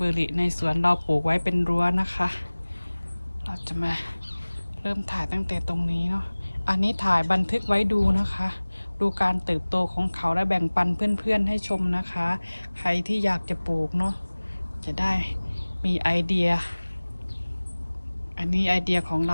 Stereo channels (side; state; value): both; inverted; correlation -1.00